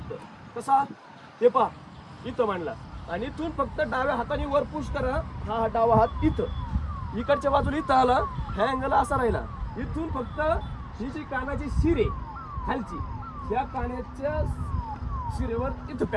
कसा ते पहा, इथं मांडला आणि इथून फक्त डाव्या हाताने वर पुश करा. हा डावा हात इथं, इकडच्या बाजूला इथं आला, ह्या अँगल असा राहिला. इथून फक्त ही जी कानाची शिर आहे खालची, ह्या कानाच्या शिरेवर इथं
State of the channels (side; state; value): both; identical; correlation 1.00